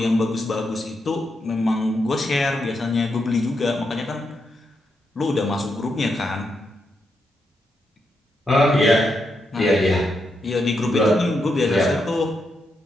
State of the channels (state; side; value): normal; both; correlation 0.82